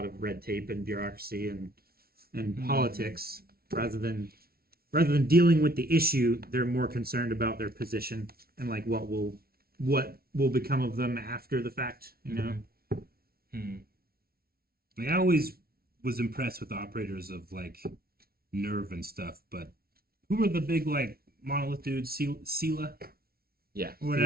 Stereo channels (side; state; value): left; late; 0.44 ms